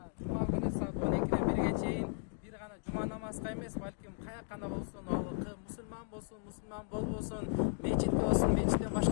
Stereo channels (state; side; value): silent; right; 54 dB below the other